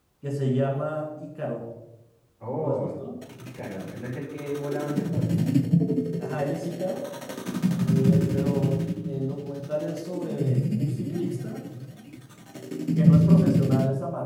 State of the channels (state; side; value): identical; both; correlation 1.00